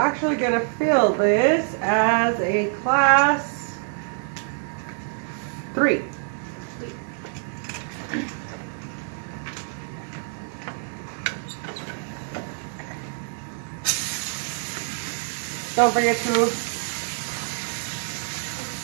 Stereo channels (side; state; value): left; silent; 61 dB below the other